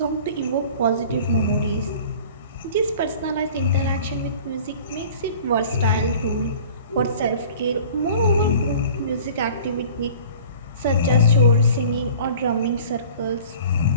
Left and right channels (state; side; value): inverted; both; correlation -0.45